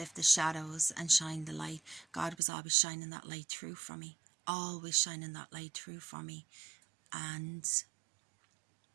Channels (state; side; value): drops out; left; at 2.4 s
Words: the shadows and shine the light. God was always shining that light through for me, always shining that light through for me. And